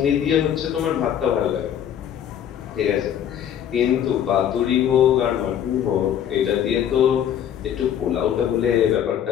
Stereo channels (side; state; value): right; quieter; 9.7 dB